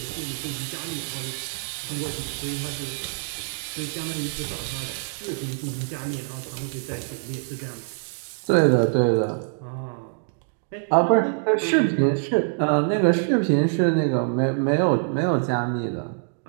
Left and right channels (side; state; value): left; silent; digital silence